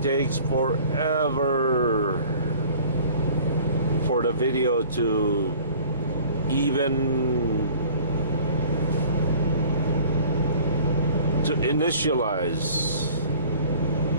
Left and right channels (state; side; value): inverted; both; correlation -0.49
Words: takes forever for the video to even to initialize